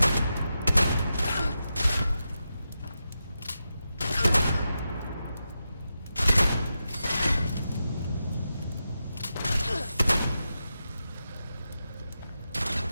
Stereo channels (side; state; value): both; inverted; correlation -0.89